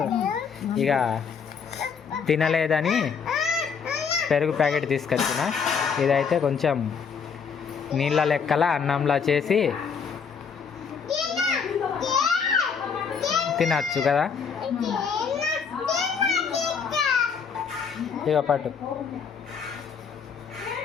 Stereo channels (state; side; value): quieter; right; 6.3 dB